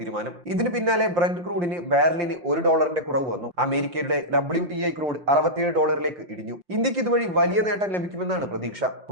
ഇതിന് പിന്നാലെ ബ്രന്റ് ക്രൂഡിന് ബാരലിന് $1 കുറവ് വന്നു. അമേരിക്കയുടെ WTI ക്രൂഡ് $67 ഇടിഞ്ഞു. ഇന്ത്യക്ക് ഇതുവഴി വലിയ നേട്ടം ലഭിക്കുമെന്നാണ് പ്രതീക്ഷ.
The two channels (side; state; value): left; late; 5.7 ms